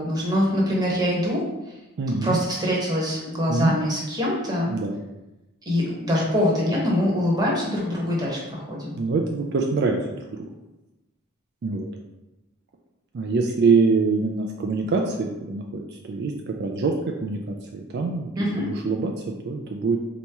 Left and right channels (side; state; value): both; normal; correlation 0.53